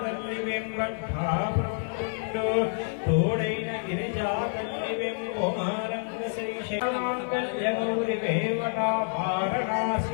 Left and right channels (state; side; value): silent; right; 59 dB below the other